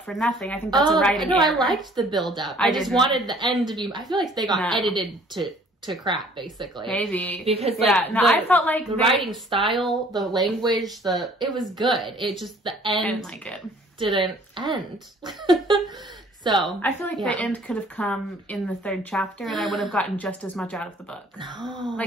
for nothing. I think that's a writing error. I liked the build up. I just wanted the end to be, I feel like they got edited to crap, basically. Maybe. Because I felt like the writing style, the language, it was good. It just, the end I didn't like it. Didn't end. So I feel like the end could have come in the 3rd chapter, and I would have gotten just as much out of the book. No.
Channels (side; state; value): both; normal; correlation 0.55